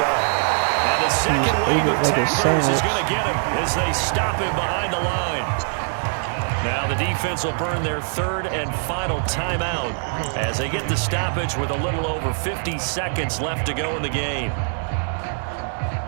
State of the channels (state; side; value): silent; left; 63 dB below the other